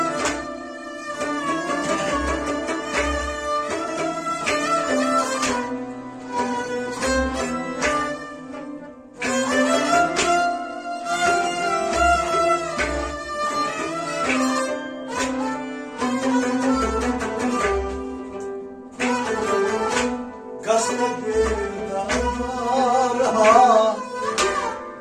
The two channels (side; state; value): both; identical; correlation 1.00